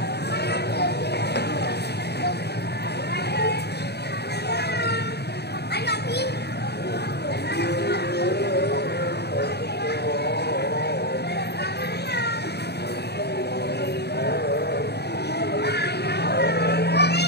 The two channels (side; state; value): right; late; 0.48 ms